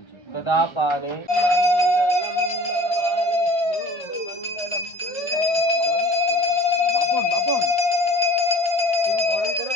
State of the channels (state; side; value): late; right; 1.3 ms